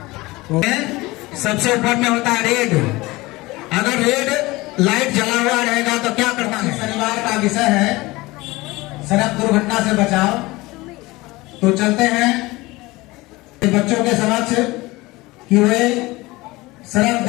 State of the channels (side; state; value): right; quieter; 21.1 dB